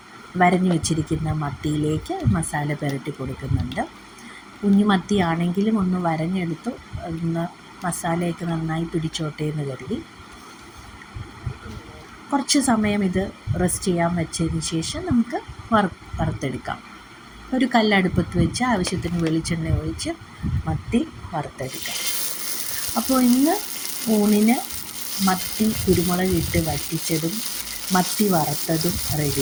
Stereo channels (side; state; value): both; identical; correlation 1.00